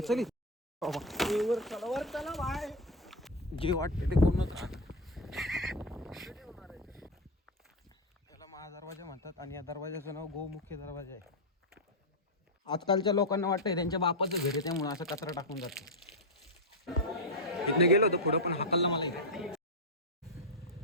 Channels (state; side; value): normal; both; correlation 0.06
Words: जे वाटते ते कोणच राहत. त्याला महादरवाजा म्हणतात आणि या दरवाजाचं नाव गोमुख्य दरवाजा आहे. आजकालच्या लोकांना वाटतंय त्यांच्या बापाचं घर आहे त्यामुळे असं कचरा टाकून जातो. इथनं गेलो होतो पुढं पण हाकललं मला इकडे.